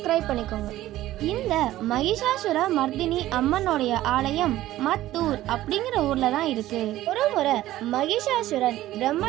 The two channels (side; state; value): left; quieter; 14.9 dB